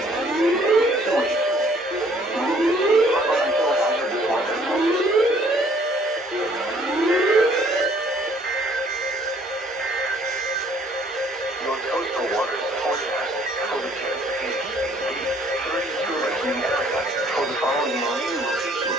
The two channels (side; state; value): both; normal; correlation 0.60